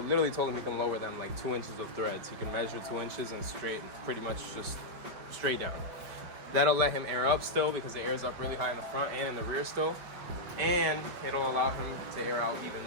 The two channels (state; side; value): late; left; 5.1 ms